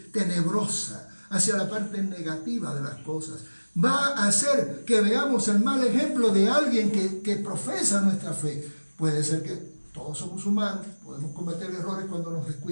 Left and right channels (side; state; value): both; inverted; correlation -1.00